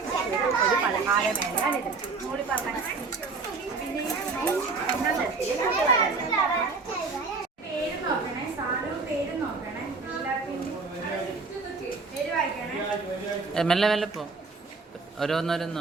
കൂടി പറഞ്ഞ പേര് നോക്കണേ, സാധനവും പേര് നോക്കണേ. പേര് വായിക്കണേ. മെല്ലെ മെല്ലെ പോ, ഓരോന്നോരോന്ന്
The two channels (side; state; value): left; quieter; 4.2 dB